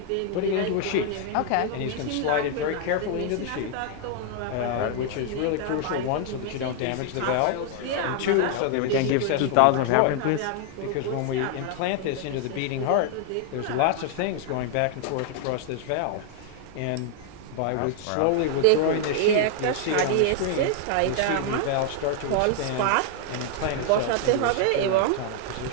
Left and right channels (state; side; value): different; both; correlation 0.00